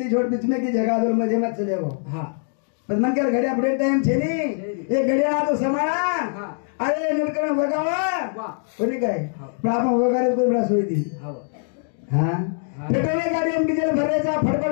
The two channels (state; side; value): silent; right; digital silence